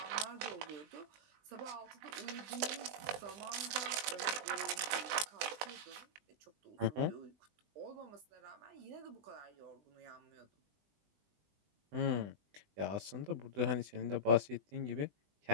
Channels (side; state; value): left; late; 20 ms